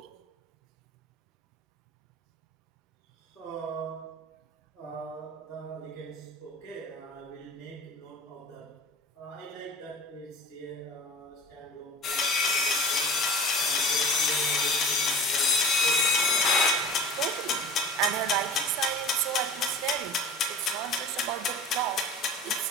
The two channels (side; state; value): both; normal; correlation 0.39